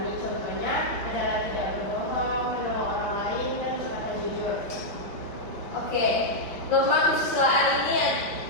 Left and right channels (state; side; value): late; right; 5.4 ms